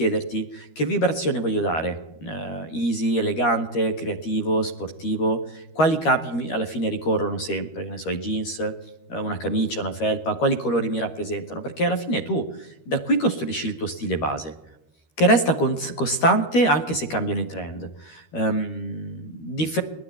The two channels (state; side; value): late; right; 13 ms